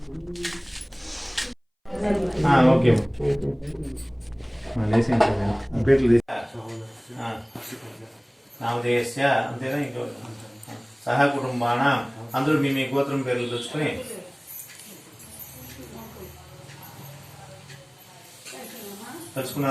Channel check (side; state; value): both; identical; correlation 1.00